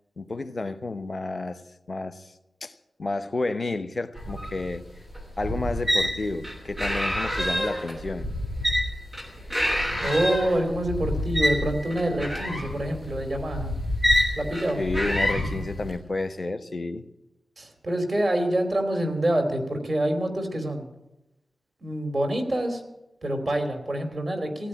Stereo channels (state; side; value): normal; both; correlation 0.93